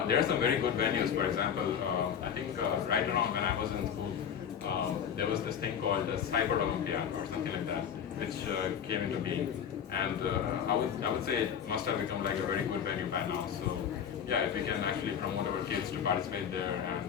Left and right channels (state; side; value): quieter; right; 8.1 dB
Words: There are some very good venues. For example, I think right around when I was in school, there was this thing called the Cyber Olympiad or something like that, which came into being, and I would say it must have become like a very good venue by now. So yeah, if we can actually promote our kids to participate there